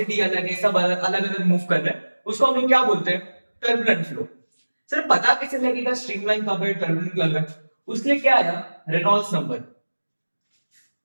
अलग है, सब अलग अलग मूव कर रहे हैं, उसको हम लोग क्या बोलते हैं? Turbulent flow. सर पता कैसे लगेगा स्ट्रीमलाइन कब है, टर्बुलेंट कब है? उसके लिए क्या आया? Reynolds number.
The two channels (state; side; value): inverted; both; correlation -1.00